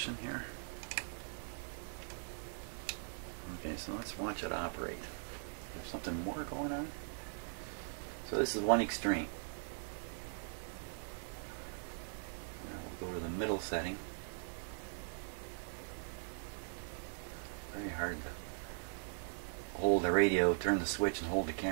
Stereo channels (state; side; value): silent; left; digital silence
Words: here? Okay, so let's watch it operate. There's something more going on. So this is one extreme. Now we'll go to the middle setting. Very hard to hold the radio, turn the switch, and hold the